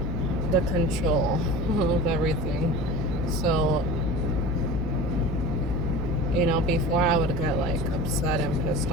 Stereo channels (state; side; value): noise; right; hum, 5 dB below the sound